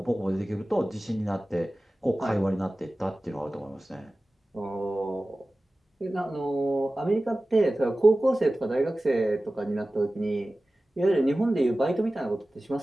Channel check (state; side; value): normal; both; correlation 0.96